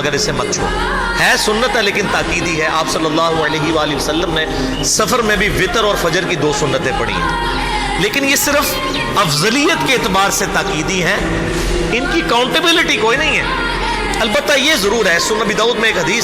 इसे मत छोड़ो। है सुन्नत है लेकिन ताकीदी है। आप सल्लल्लाहु अलैहि वसल्लम ने सफ़र में भी वितर और फजर की 2 सुन्नतें पढ़ी हैं, लेकिन ये सिर्फ अफजलियत के एतबार से ताकीदी हैं, इनकी काउंटेबिलिटी कोई नहीं है। अलबत्ता ये ज़रूर है, सुनन अबी दाऊद में एक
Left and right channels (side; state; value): both; identical; correlation 1.00